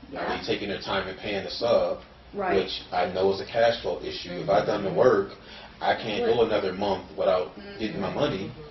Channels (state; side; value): identical; both; correlation 1.00